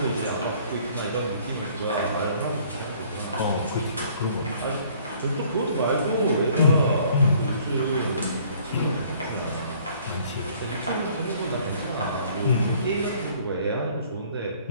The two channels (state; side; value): inverted; both; correlation -0.57